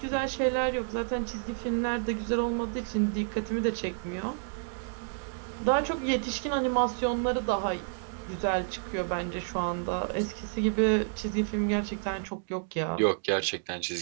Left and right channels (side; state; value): left; silent; digital silence